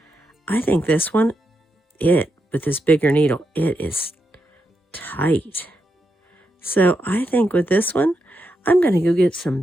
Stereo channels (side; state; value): both; normal; correlation 0.84